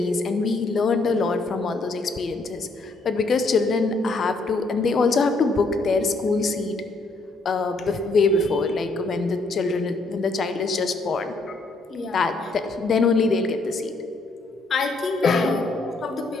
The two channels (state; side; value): quieter; right; 3.3 dB